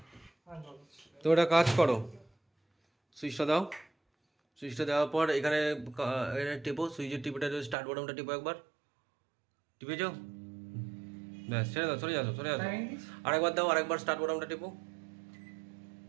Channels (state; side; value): drops out; left; at 7.8 s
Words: হ্যাঁ জল। তো একটা কাজ করো, সুইচটা দাও। সুইচটা দেওয়ার পর এখানে এখানে টিপো, সুইচের টিপিটা স্টার্ট বাটনটা টিপো একবার। টিপেছো? ব্যাস, ছেড়ে দাও, সরে যাও, সরে যাও। Timing this. আরেকবার দাও, আরেকবার স্টার্ট বাটনটা টিপো।